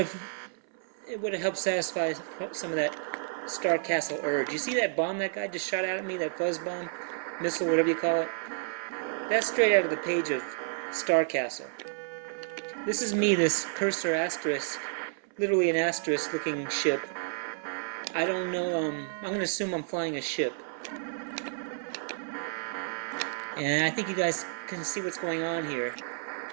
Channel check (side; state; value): left; silent; 57 dB below the other